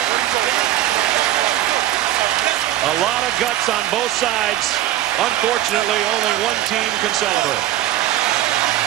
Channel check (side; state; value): left; quieter; 13.7 dB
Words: A lot of guts on both sides. Unfortunately, only one team can celebrate.